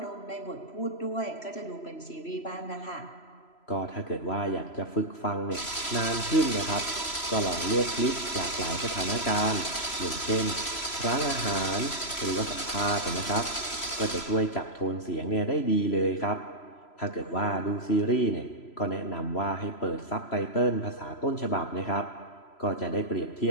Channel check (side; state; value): right; late; 3.0 ms